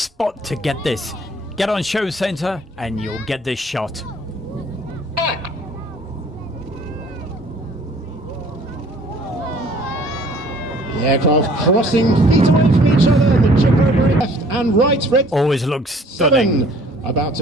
to get this. Get on Show Centre and you'll get this shot. The aircraft crossing feet away from each other. The chip over left and right. Red always looks stunning. 7 about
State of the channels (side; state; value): both; normal; correlation 0.55